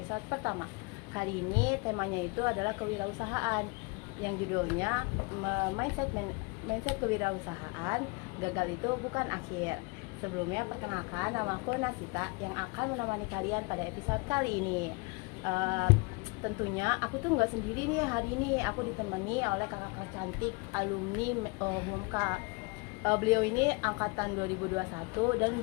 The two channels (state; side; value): quieter; right; 28.8 dB